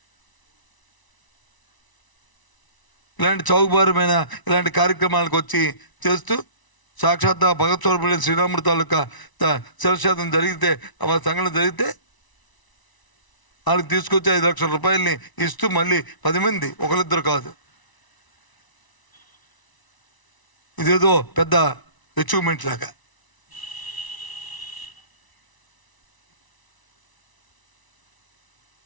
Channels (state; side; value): late; right; 1.0 ms